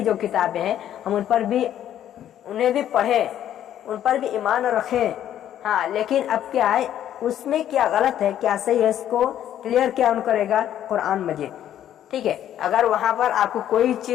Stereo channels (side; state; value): right; quieter; 11.0 dB